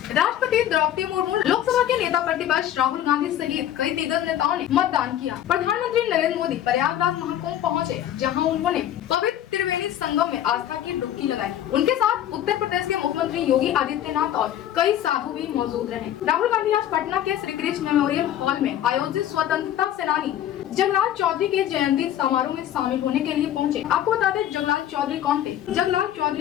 राष्ट्रपति द्रौपदी मुर्मू, लोकसभा के नेता प्रतिपक्ष राहुल गांधी सहित कई दिग्गज नेताओं ने मतदान किया। प्रधानमंत्री नरेंद्र मोदी प्रयागराज महाकुंभ पहुंचे, जहां उन्होंने पवित्र त्रिवेणी संगम में आस्था की डुबकी लगाई। उनके साथ उत्तर प्रदेश के मुख्यमंत्री योगी आदित्यनाथ और कई साधु भी मौजूद रहे। राहुल गांधी आज पटना के श्री कृष्ण मेमोरियल हॉल में आयोजित स्वतंत्रता सेनानी जगलाल चौधरी के जयंती समारोह में शामिल होने के लिए पहुंचे। आपको बता दें, जगलाल चौधरी कौन थे? जगलाल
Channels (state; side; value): quieter; right; 11.5 dB